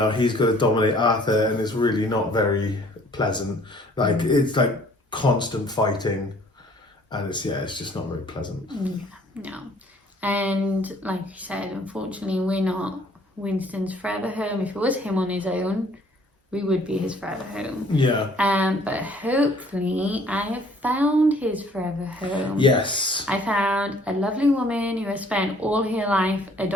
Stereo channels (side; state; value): both; normal; correlation 0.57